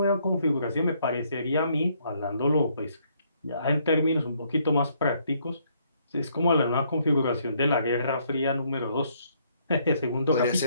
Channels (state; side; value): inverted; both; correlation -0.69